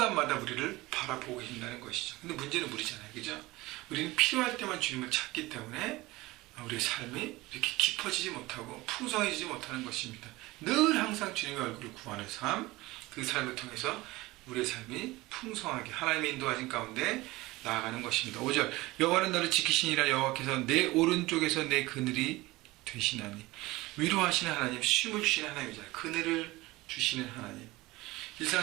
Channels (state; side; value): quieter; left; 20.2 dB